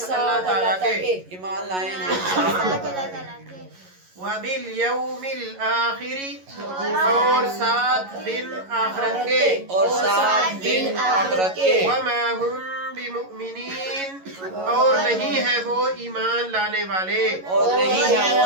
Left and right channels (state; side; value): late; left; 11 ms